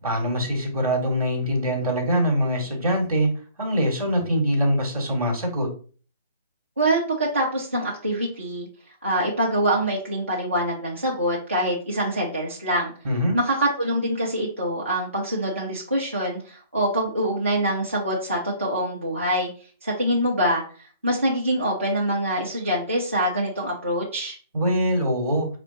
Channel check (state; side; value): inverted; both; correlation -0.54